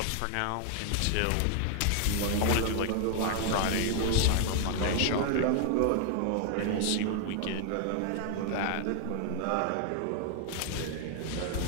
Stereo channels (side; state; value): both; different; correlation 0.00